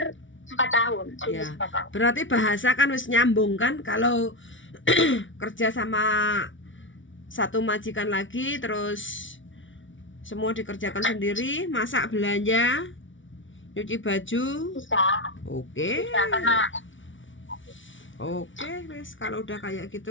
4 tahun. Ya. Berarti bahasa kan wis nyambung kan kalau kerja sama satu majikan lagi, terus semua dikerjakan sendiri, masak, belanja, nyuci baju. Bisa. Oke. Bisa, karena Oke, wis kalau udah kayak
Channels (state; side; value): late; right; 0.56 ms